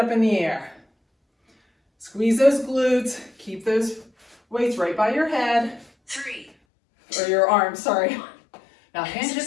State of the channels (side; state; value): right; drops out; at 6.5 s